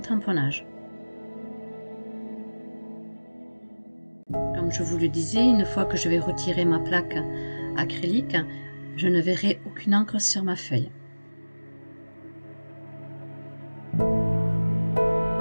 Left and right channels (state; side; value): inverted; both; correlation -1.00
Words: Comme je vous le disais, une fois que je vais retirer ma plaque acrylique, je ne verrai aucune encre sur ma feuille.